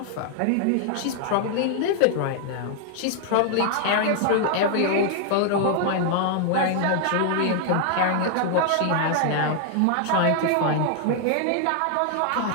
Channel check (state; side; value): different; both; correlation 0.00